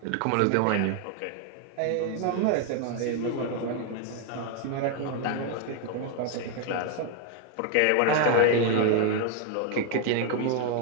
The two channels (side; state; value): both; different; correlation 0.01